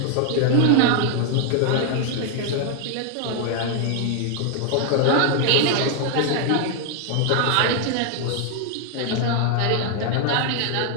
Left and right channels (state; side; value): different; both; correlation 0.00